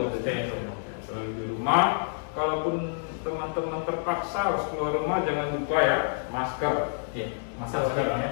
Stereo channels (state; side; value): silent; right; digital silence